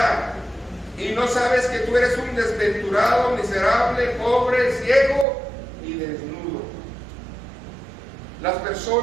y no sabes que tú eres un desventurado, miserable, pobre, ciego y desnudo. Las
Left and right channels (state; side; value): drops out; left; at 5.2 s